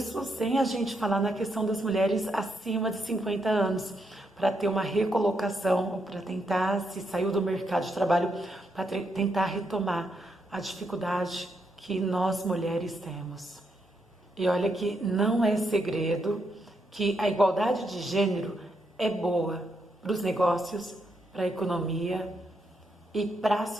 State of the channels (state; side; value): normal; both; correlation 0.79